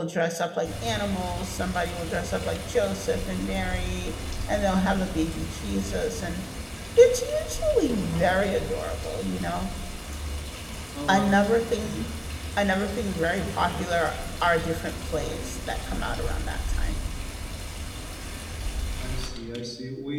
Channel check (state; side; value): identical; both; correlation 1.00